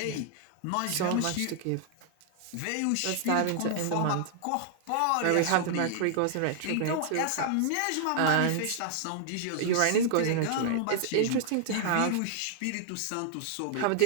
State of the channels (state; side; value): different; both; correlation 0.00